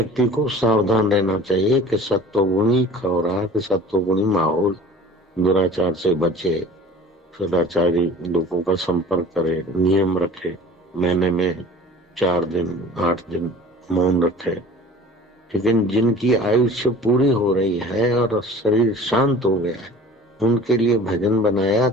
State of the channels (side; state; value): both; normal; correlation 0.43